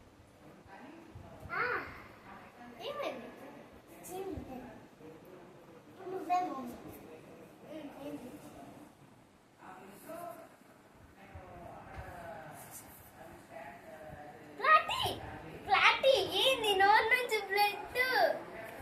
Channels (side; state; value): both; identical; correlation 1.00